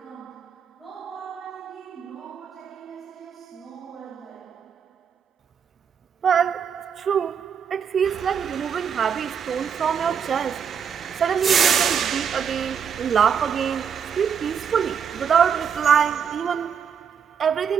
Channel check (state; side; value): quieter; left; 7.3 dB